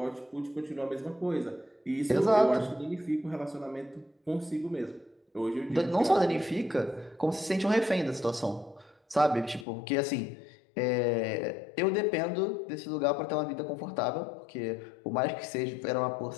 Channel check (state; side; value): drops out; right; at 9.7 s